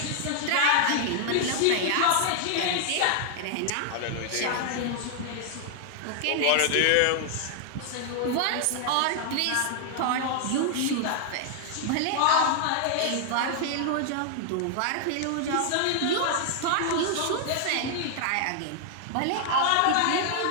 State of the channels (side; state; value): both; different; correlation 0.00